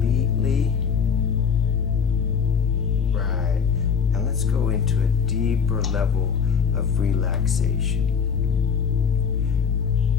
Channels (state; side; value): quieter; right; 6.6 dB